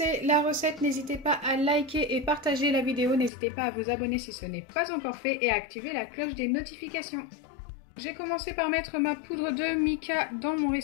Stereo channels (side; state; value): right; drops out; at 3.3 s